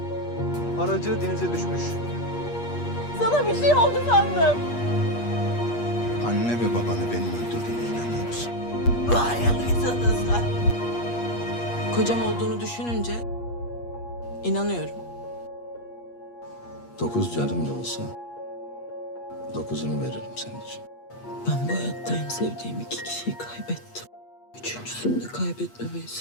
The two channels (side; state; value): right; late; 8.4 ms